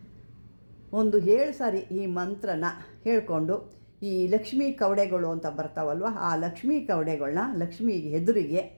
ಒಂದು 7 ಸಾರಿ ಈ ಮಂತ್ರನ ಹೇಳ್ಕೊಂಡು ಈ ಲಕ್ಷ್ಮೀ ಕವಡೆಗಳು ಅಂತ ಬರ್ತಾವಲ್ವ, ಆ ಲಕ್ಷ್ಮೀ ಕವಡೆಗಳನ್ನ ಲಕ್ಷ್ಮೀ ಎದುರಿಗೆ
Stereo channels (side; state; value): both; inverted; correlation -1.00